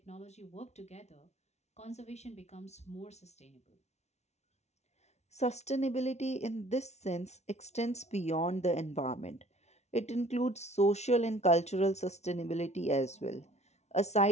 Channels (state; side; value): late; right; 0.32 ms